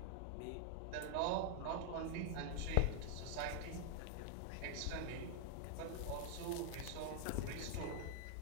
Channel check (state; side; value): different; both; correlation 0.00